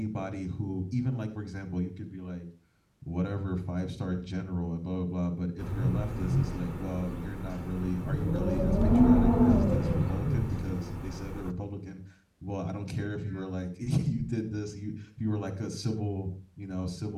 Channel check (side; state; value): both; identical; correlation 1.00